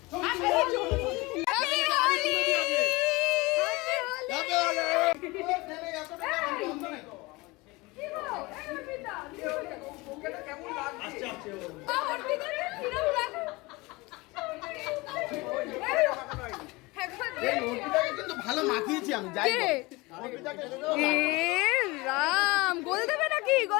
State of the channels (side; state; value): right; quieter; 23.3 dB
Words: ভালো মাখিয়েছি আমি, যাই রাম, গোল দেবে নাকি?